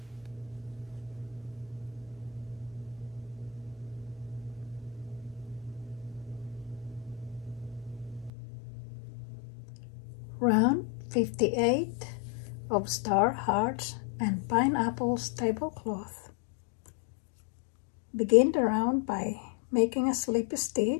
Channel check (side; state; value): right; drops out; at 8.3 s